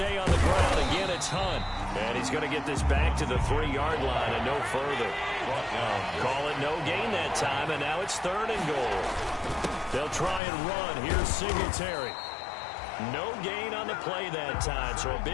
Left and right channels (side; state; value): right; drops out; at 10.4 s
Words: on the ground. Again, it's Hunt. And he's going to get this back to the 3-yard line and no further. Call it no gain that time, and now it's 3rd and goal. They'll try and run. Here's Singletary. No gain on the play that time, so a